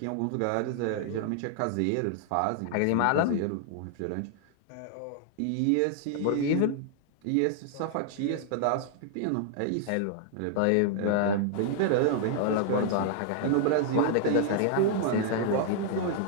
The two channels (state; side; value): different; both; correlation -0.01